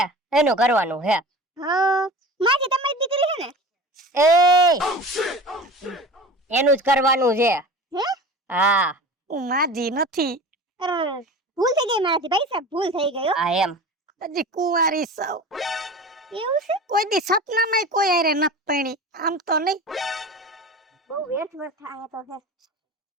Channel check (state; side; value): normal; both; correlation 0.36